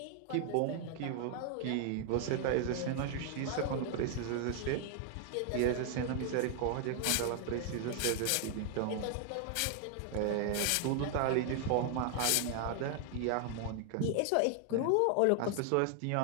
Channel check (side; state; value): both; different; correlation 0.00